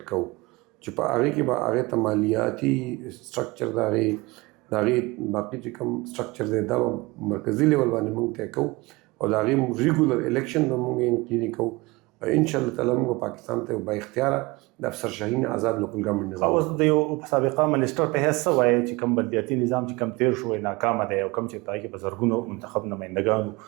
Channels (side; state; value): left; quieter; 23.4 dB